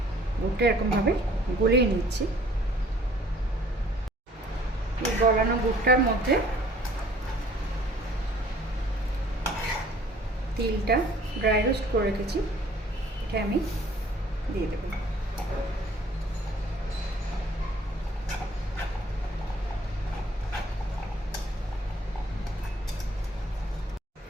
গুড়টা এরকমভাবে গলিয়ে নিচ্ছি। এই গলানো গুড়টার মধ্যে তিলটা ড্রাই রোস্ট করে রেখেছি, এটা আমি দিয়ে দেব।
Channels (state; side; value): normal; both; correlation 0.56